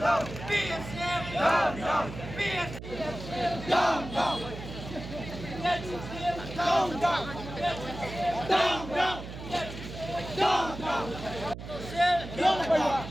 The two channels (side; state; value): right; noise; hum, 11 dB below the sound